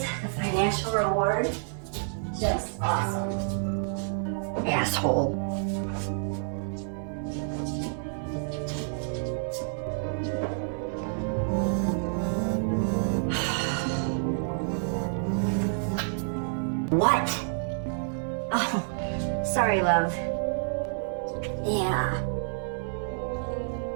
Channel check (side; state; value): left; silent; digital silence